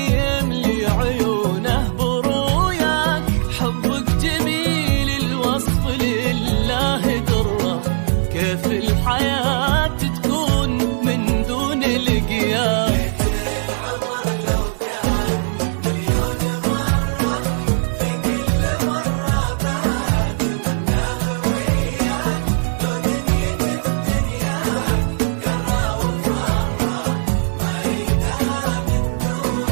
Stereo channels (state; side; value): silent; left; digital silence